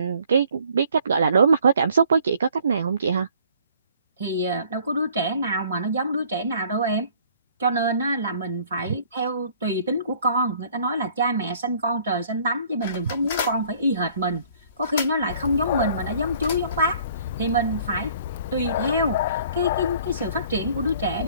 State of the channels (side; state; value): both; inverted; correlation -0.57